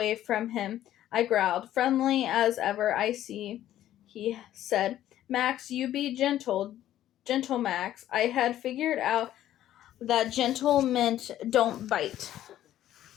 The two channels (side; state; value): right; quieter; 12.6 dB